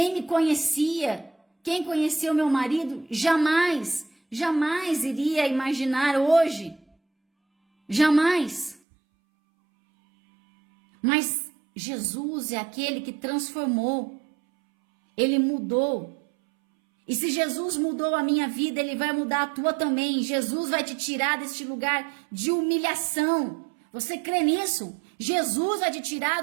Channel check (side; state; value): left; drops out; at 8.8 s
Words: me conhecia, quem conhecia o meu marido, jamais iria imaginar hoje. Jamais. Mas Jesus é aquele que transformou. Ele mudou. E se Jesus mudou a minha vida, Ele vai mudar a tua também. Jesus vai te tirar deste lugar de humilhação. Você crê nisso? Jesus vai te tirar